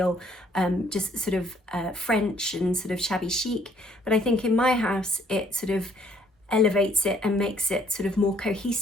just sort of French and sort of shabby chic. But I think in my house, it sort of elevates it and makes it sort of more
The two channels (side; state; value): both; normal; correlation 0.64